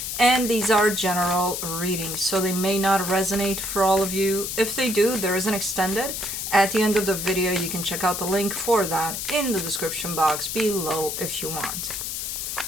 And these are general readings, so they may not resonate for all of you. If they do, there is an extended. At the end of the video, you can check out the link for that in the description box below if you want.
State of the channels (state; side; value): noise; left; hiss, 4 dB below the sound